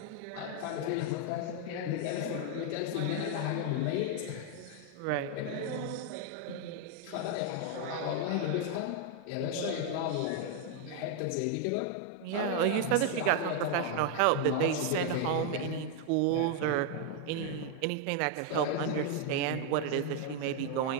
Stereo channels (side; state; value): both; different; correlation 0.01